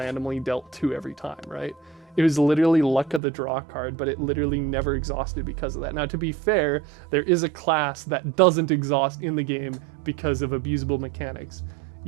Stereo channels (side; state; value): left; drops out; at 3.2 s